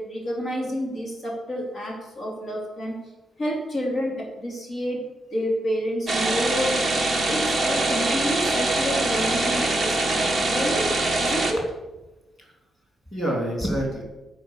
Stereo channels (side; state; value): both; normal; correlation 0.83